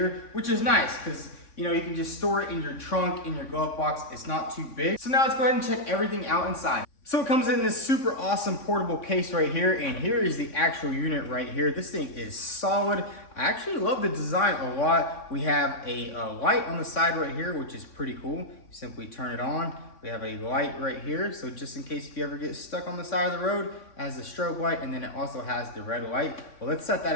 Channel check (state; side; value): late; right; 3.6 ms